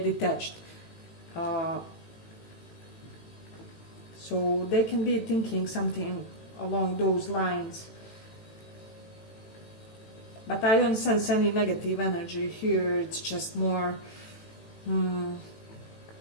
So they can be thinking something along those lines. But I don't sense any negative energy here. It's just more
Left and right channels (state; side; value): late; right; 18 ms